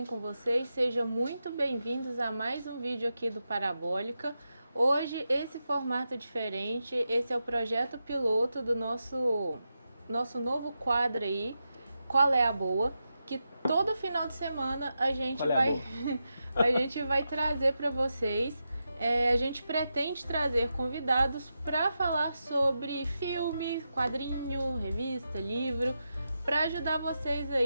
com vocês? Sejam muito bem-vindos a mais um vídeo aqui do Parabólica. Hoje, esse formato diferente, esse é o projeto piloto do nosso novo quadro aí, Qual é a Boa? Que todo final de semana a gente a gente vai trazer para vocês. A gente pretende trazer convidados para falar sobre filme, quadrinho, revista, livro, para ajudar vocês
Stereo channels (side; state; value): both; inverted; correlation -0.88